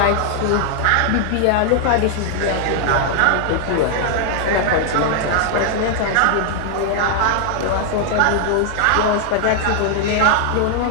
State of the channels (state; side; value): different; both; correlation 0.00